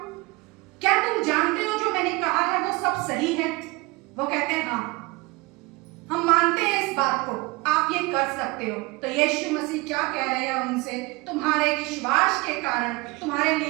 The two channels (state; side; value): quieter; left; 24.2 dB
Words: क्या तुम जानते हो जो मैंने कहा है वो सब सही है? वो कहते हैं हाँ, हम मानते हैं इस बात को, आप ये कर सकते हो। तो यीशु मसीह क्या कह रहे हैं उनसे? तुम्हारे विश्वास के कारण तुम्हारे